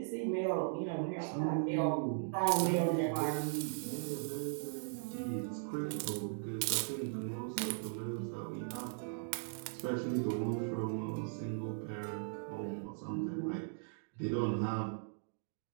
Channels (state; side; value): silent; left; digital silence